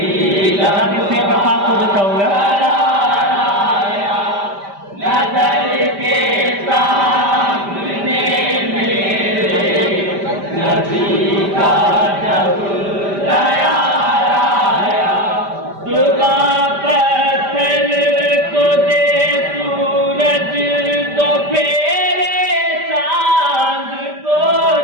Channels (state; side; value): late; left; 5.1 ms